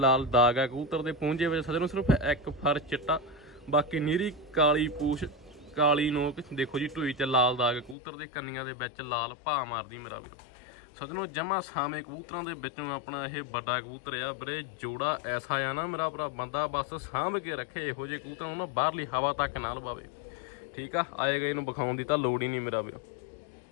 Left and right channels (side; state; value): right; drops out; at 8.0 s